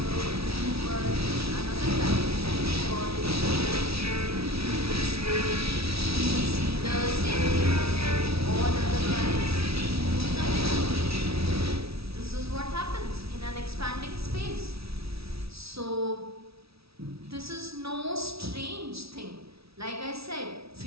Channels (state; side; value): late; left; 0.76 ms